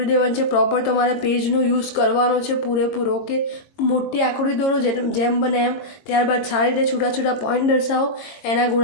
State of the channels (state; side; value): late; right; 22 ms